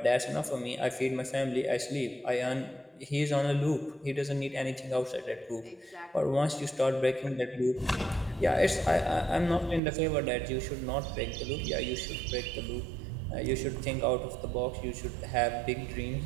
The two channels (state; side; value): drops out; left; at 9.8 s